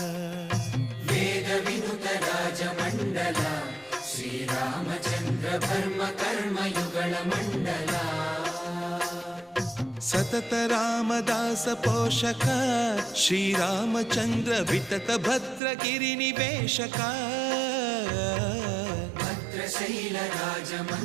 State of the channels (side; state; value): left; drops out; at 15.6 s